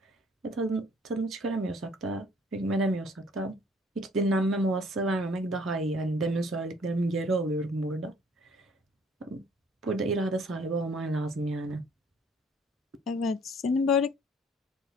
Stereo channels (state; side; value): normal; both; correlation 0.58